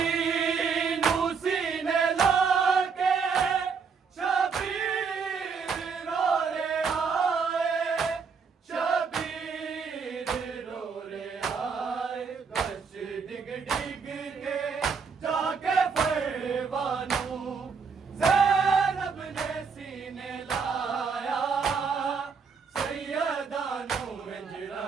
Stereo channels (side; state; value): left; quieter; 5.6 dB